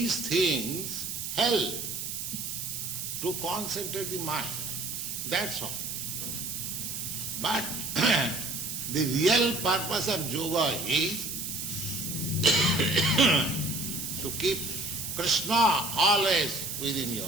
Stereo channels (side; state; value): right; noise; hiss, 5 dB below the sound